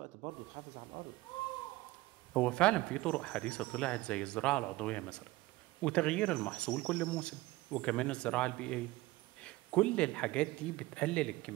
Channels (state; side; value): quieter; left; 19.3 dB